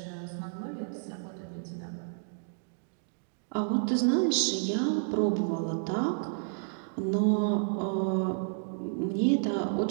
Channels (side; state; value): left; silent; digital silence